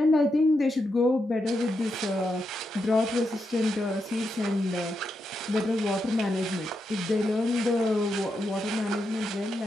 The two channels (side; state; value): both; normal; correlation 0.84